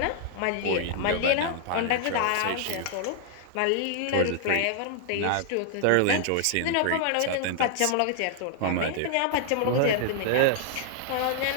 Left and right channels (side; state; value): both; different; correlation -0.01